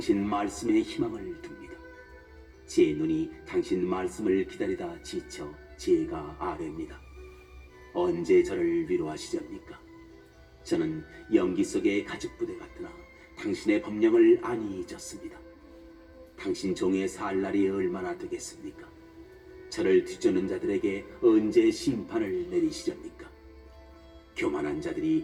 말씀에 희망을 둡니다. 제 눈이 당신 말씀을 기다리다 지쳐 제가 아뢰입니다. 언제 저를 위로하시렵니까? 저는 연기 속의 가죽부대 같으나 당신의 법령을 안이 잊었습니다. 당신 종의 살 날이 얼마나 되겠습니까? 저를 뒤쫓는 자들에게 언제 심판을 내리시렵니까? 교만한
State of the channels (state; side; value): identical; both; correlation 1.00